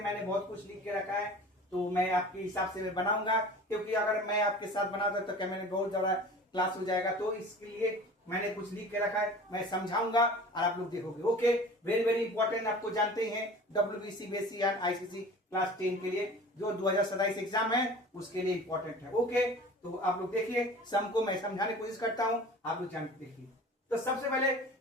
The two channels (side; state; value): both; normal; correlation 0.41